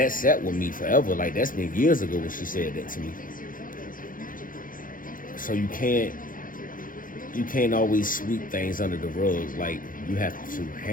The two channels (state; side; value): late; right; 0.40 ms